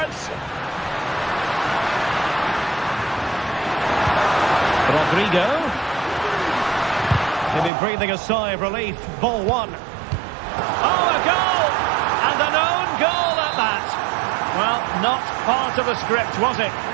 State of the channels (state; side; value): drops out; left; at 7.7 s